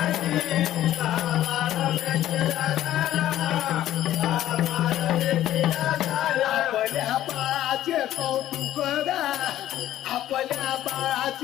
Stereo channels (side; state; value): right; quieter; 13.0 dB